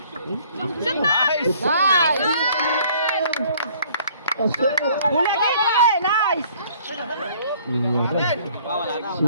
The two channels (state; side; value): inverted; both; correlation -0.57